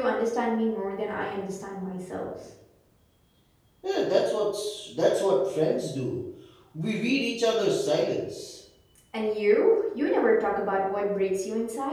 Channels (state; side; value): identical; both; correlation 1.00